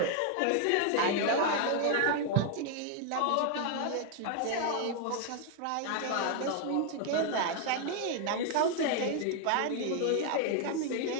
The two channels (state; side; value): different; both; correlation 0.00